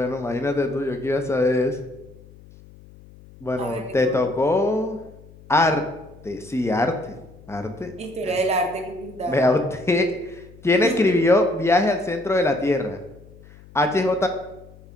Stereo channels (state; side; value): noise; left; hum, 22 dB below the sound